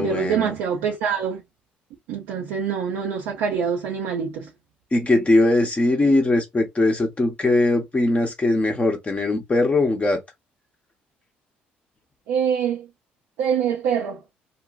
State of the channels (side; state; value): both; normal; correlation 0.74